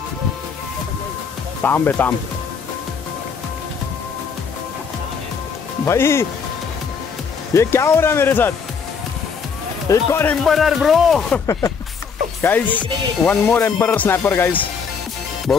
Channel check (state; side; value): quieter; right; 6.0 dB